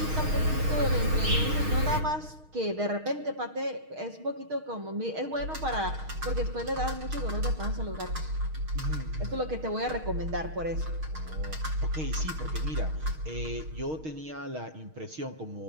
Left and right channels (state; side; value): late; left; 6.4 ms